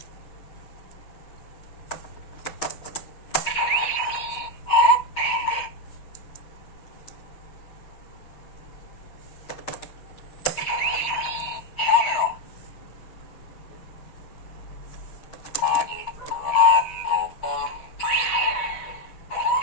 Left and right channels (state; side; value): late; right; 6.4 ms